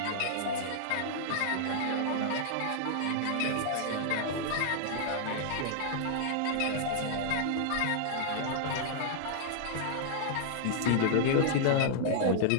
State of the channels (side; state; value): both; different; correlation -0.01